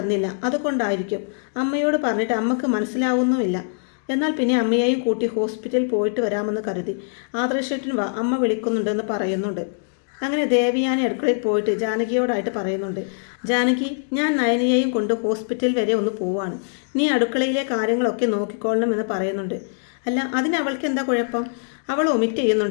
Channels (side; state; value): right; silent; digital silence